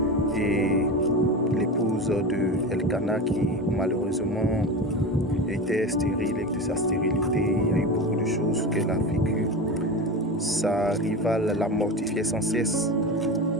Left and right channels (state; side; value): normal; both; correlation 0.25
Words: et l'épouse de Elkana qui malheureusement était stérile. Et de sa stérilité, il y a eu beaucoup de choses qu'elle a vécues. Sa rivale la mortifiait sans cesse